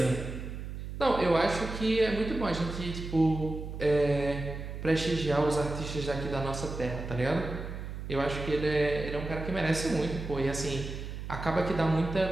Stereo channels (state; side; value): noise; right; hum, 8 dB below the sound